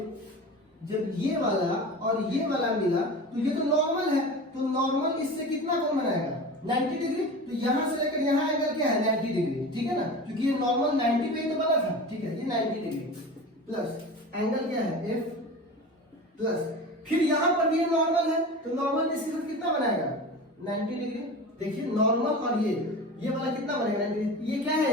जब ये वाला और ये वाला मिला तो ये तो नॉर्मल है, तो नॉर्मल इससे कितना कोण बनाएगा, 90 डिग्री। तो यहां से लेकर यहां एंगल क्या है, 90 डिग्री, ठीक है ना, क्योंकि ये नॉर्मल 90 पे ही तो बना था, ठीक है। ये 90 डिग्री प्लस एंगल क्या है, F, प्लस फिर यहां पर भी ये नॉर्मल है, तो नॉर्मल इसके साथ कितना बनाएगा, 90 डिग्री। देखिए नॉर्मल और ये वाला कितना बनेगा, 90 डिग्री। ये क्या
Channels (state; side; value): normal; both; correlation 0.32